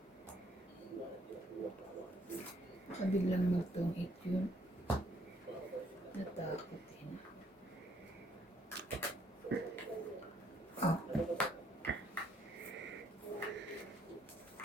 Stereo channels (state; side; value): normal; both; correlation 0.68